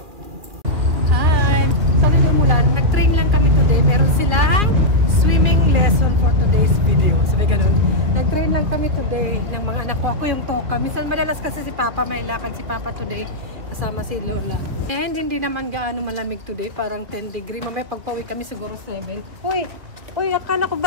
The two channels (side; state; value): left; late; 2.6 ms